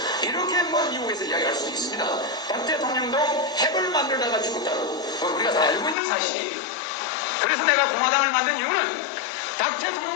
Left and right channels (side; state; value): right; drops out; at 6.0 s